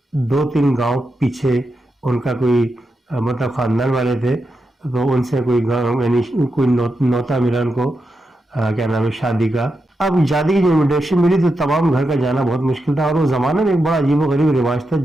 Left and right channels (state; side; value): normal; both; correlation 0.87